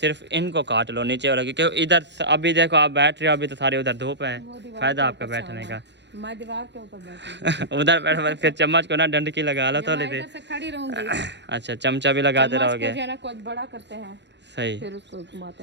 इनको काट लो नीचे वाला, क्योंकि इधर अभी देखो आप बैठ रहे हो, अभी तो सारी उधर धूप है, फायदा आपका बैठने का। मैं दीवार के ऊपर बैठी उधर बैठ फिर चम्मच को ना डंडकी लगा लो थोड़ी देर। से खड़ी रहूंगी। अच्छा चमचा भी लगाते रहोगे, जो है ना कुछ बड़ा करते हैं सही। फिर उसको घुमाते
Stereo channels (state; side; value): late; left; 0.51 ms